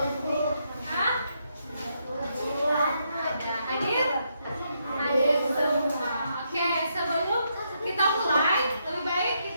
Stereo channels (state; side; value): inverted; both; correlation -0.78